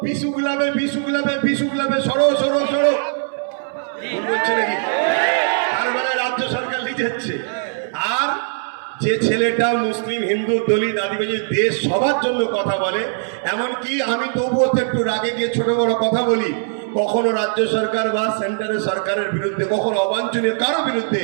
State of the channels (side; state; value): left; silent; 66 dB below the other